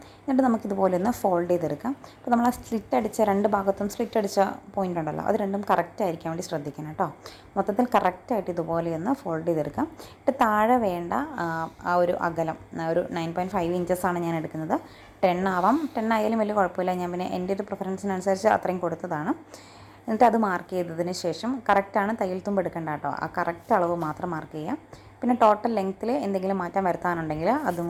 എന്നിട്ട് നമുക്കിതുപോലെ ഒന്ന് ഫോൾഡ് ചെയ്തെടുക്കാം. അപ്പോൾ നമ്മൾ ആ സ്ലിറ്റ് അടിച്ച രണ്ട് ഭാഗത്തും സ്ലിറ്റ് അടിച്ച പോയിൻ്റ് ഉണ്ടല്ലോ, അത് രണ്ടും കറക്റ്റ് ആയിരിക്കാൻ വേണ്ടി ശ്രദ്ധിക്കണം കേട്ടോ. മൊത്തത്തിൽ കറക്റ്റായിട്ട് ഇതുപോലെ ഒന്ന് ഫോൾഡ് ചെയ്തെടുക്കാം. എന്നിട്ട് താഴെ വേണ്ട ആ ഒരു അകലം ഒരു 9.5 ഇഞ്ചസാണ് ഞാൻ എടുക്കുന്നത്. 10 ആവാം, 10 ആയാലും വലിയ കുഴപ്പമില്ല. ഞാൻ പിന്നെ എൻ്റെ ഒരു പ്രിഫറൻസിനനുസരിച്ച് അത്രയും കൊടുത്തതാണ്. എന്നിട്ട് അത് മാർക്ക് ചെയ്തതിന് ശേഷം കറക്റ്റാണ്, തയ്യൽ തുമ്പ് എടുക്കേണ്ട കേട്ടോ. ആ കറക്റ്റ് അളവ് മാത്രം മാർക്ക് ചെയ്യാം. പിന്നെ ടോട്ടൽ ലെങ്ത്തിൽ എന്തെങ്കിലും മാറ്റം വരുത്താനുണ്ടെങ്കിൽ അതും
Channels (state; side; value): identical; both; correlation 1.00